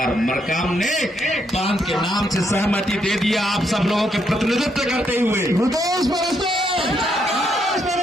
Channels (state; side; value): normal; both; correlation 0.76